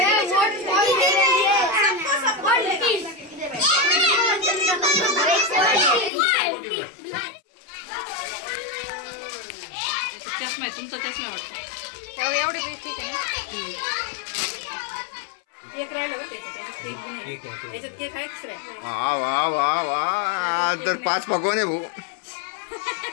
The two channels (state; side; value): drops out; right; at 6.1 s